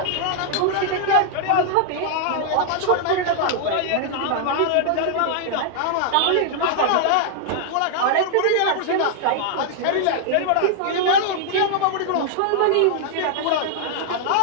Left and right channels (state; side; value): different; both; correlation -0.01